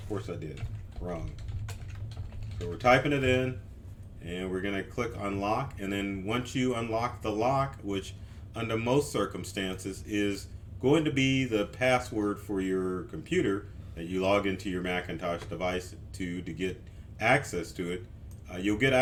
course I did. Wrong. So we're typing it in and we're going to click unlock, and then once you unlock the lock, which under most circumstances is going to be the password for your computer that you log into your Macintosh device to get access to it, you'll get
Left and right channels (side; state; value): both; identical; correlation 1.00